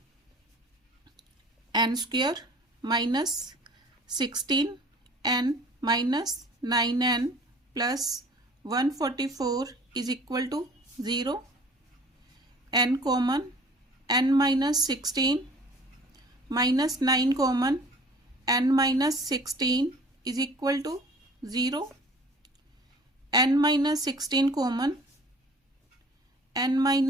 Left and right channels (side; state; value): both; normal; correlation 0.49